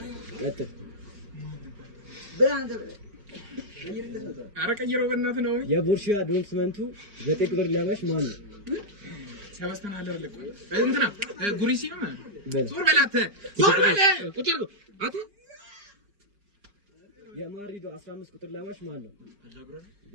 ቀጥል ቀይረው በእናትህ ነው። የቦሩሲያ ዶርትመንቱ 9 ቁጥር ለባሽ ማን ነው? ሰበስተን አለር ለቆ እንትና ጉሪሲ ነው በለ ሱር በላተ ሱር በለ ቁጭ አቱ የማድሪዱ 15 ቁጥር ለባሽ ማን ነው?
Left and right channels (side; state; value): left; late; 4.9 ms